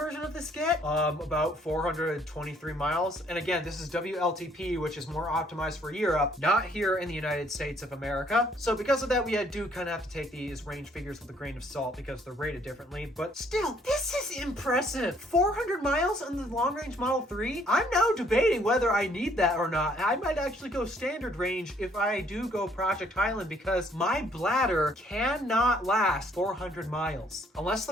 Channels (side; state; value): both; normal; correlation 0.64